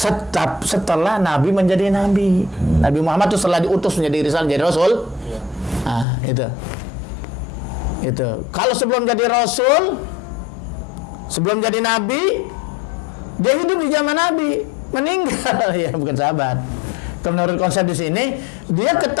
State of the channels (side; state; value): right; drops out; at 6.1 s